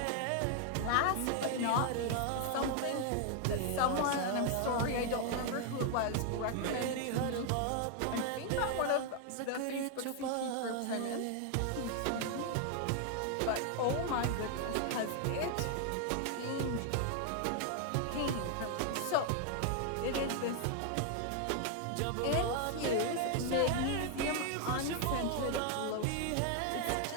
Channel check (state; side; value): different; both; correlation 0.00